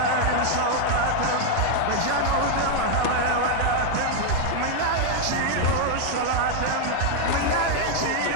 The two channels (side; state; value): both; different; correlation 0.00